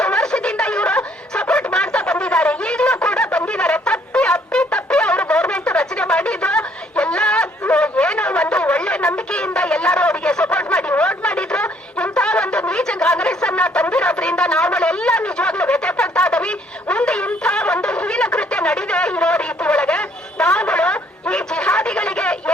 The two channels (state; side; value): normal; both; correlation 0.64